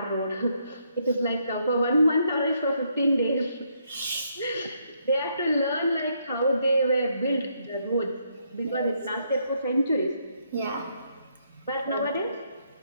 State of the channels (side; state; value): both; inverted; correlation -0.74